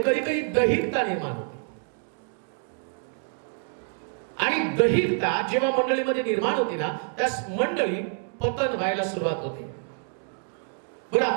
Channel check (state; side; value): silent; left; 56 dB below the other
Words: कधी कधी दैहिकता निर्माण होते. आणि दैहिकता जेव्हा मंडळीमध्ये निर्माण होते ना, त्यास मंडळी पतन व्हायला सुरुवात होते. बरं,